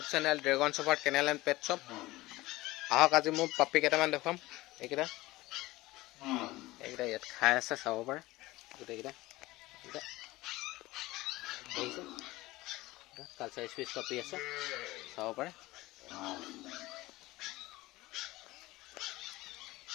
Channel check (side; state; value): right; quieter; 19.2 dB